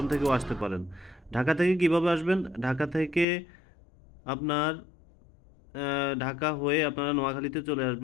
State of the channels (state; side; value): drops out; right; at 3.2 s